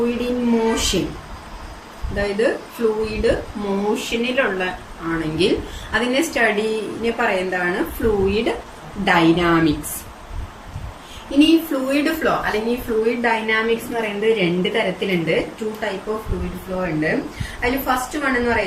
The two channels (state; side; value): identical; both; correlation 1.00